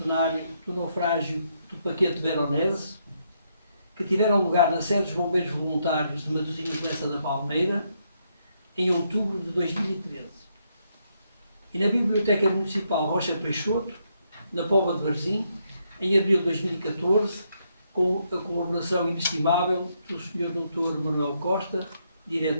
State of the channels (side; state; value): both; inverted; correlation -0.76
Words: do naufrágio do paquete Veronese, que tiveram lugar na sede dos Bombeiros Voluntários de Matosinhos Lessa da Palmeira, em outubro de 2013. E na Biblioteca Municipal Rocha Peixoto, na Póvoa de Varzim, em abril de 2014, com a colaboração inestimável do Sr. Dr. Manuel Costa,